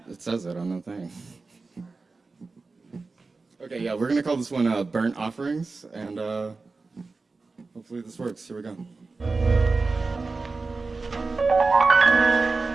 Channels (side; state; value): left; quieter; 3.9 dB